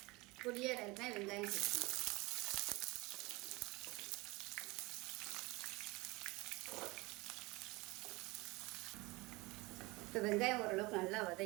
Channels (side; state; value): left; quieter; 23.4 dB